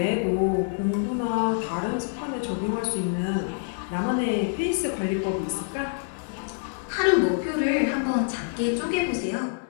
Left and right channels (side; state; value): right; silent; 61 dB below the other